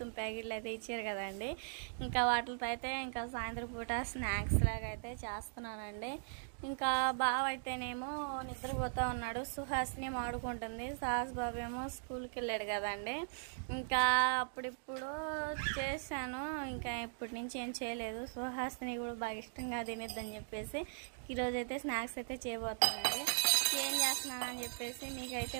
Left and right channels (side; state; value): left; silent; digital silence